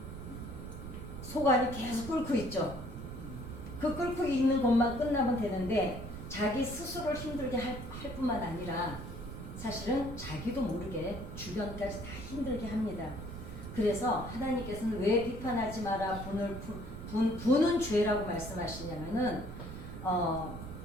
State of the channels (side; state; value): right; noise; rumble, 9 dB below the sound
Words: 속 안이 계속 끓고 있죠. 그 끓고 있는 것만 끝나면 되는데 자기 스스로를 힘들게 할 뿐만 아니라 사실은 자기도 모르게 주변까지 다 힘들게 합니다. 그래서 하나님께서는 왜 비판하지 마라 분은 죄라고 말씀하시냐면은